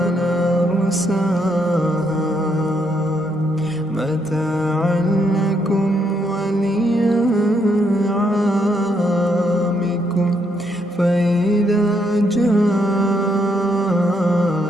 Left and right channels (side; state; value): both; normal; correlation 0.75